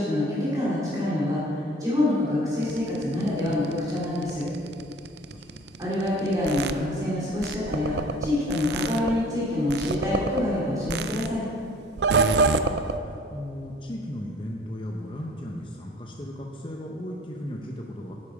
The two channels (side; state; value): both; normal; correlation 0.50